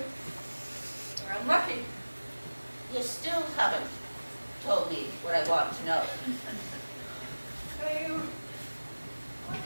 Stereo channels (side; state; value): both; inverted; correlation -1.00